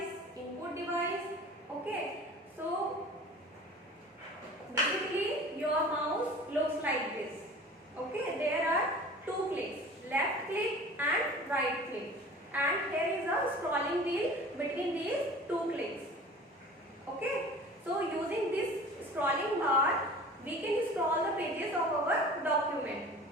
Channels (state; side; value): normal; both; correlation 0.42